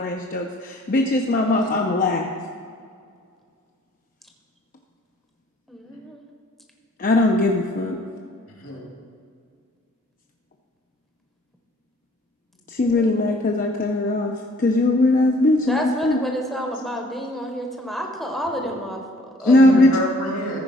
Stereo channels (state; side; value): normal; both; correlation 0.57